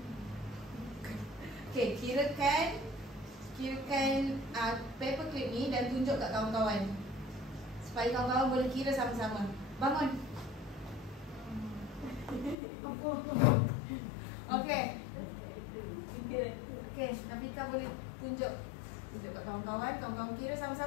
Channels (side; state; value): right; drops out; at 12.6 s